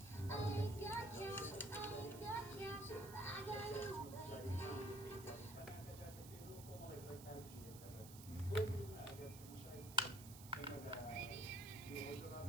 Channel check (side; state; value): right; noise; hiss, 14 dB below the sound